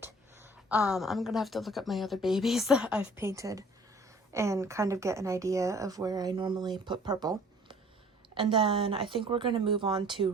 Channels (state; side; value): normal; both; correlation 0.53